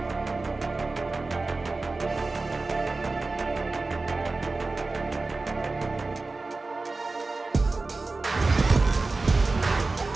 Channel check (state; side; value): quieter; left; 3.6 dB